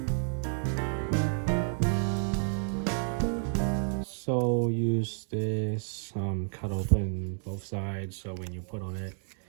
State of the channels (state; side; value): silent; left; 57 dB below the other